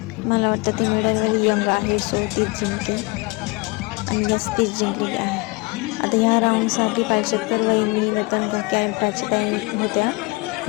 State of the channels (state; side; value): quieter; right; 25.9 dB